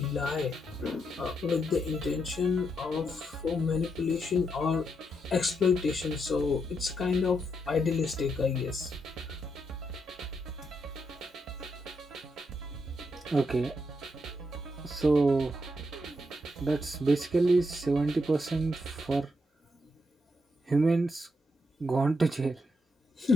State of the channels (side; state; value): both; normal; correlation 0.80